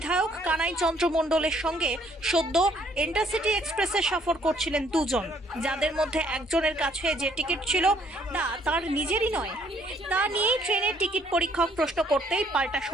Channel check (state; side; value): normal; both; correlation 0.65